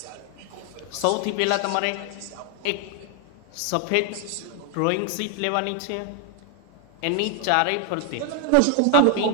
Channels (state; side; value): different; both; correlation 0.01